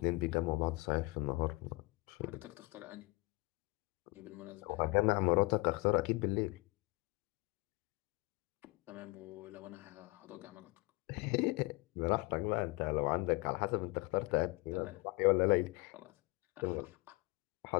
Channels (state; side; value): quieter; right; 25.3 dB